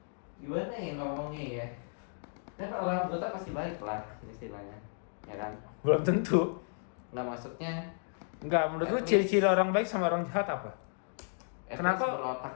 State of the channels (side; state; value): right; silent; digital silence